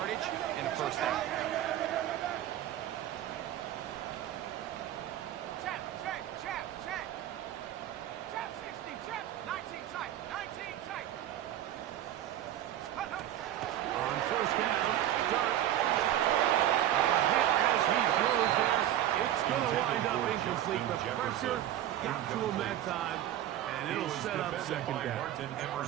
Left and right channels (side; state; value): left; quieter; 12.2 dB